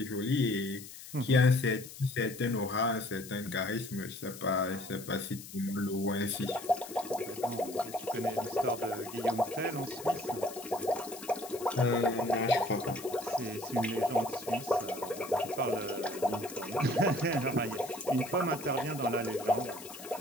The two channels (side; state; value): left; noise; hiss, 14 dB below the sound